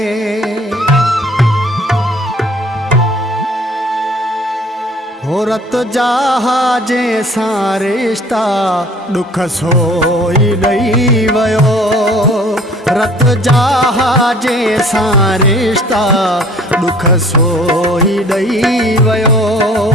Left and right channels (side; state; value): both; normal; correlation 0.52